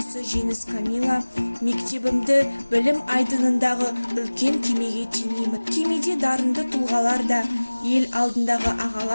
Жеңіс Камила. Мектебімді білім айдынындағы үлкен кемеге теңеймін. Кемеде дарынды тұлғалар да, ел алдындағы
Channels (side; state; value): both; inverted; correlation -1.00